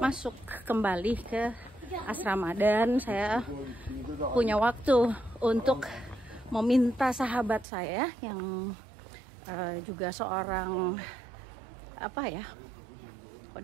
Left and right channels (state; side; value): drops out; left; at 7.7 s